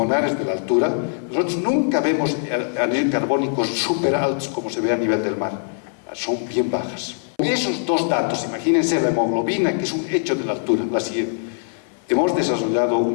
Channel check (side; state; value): right; silent; 59 dB below the other